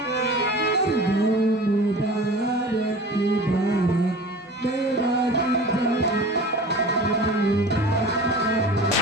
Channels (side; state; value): both; normal; correlation 0.39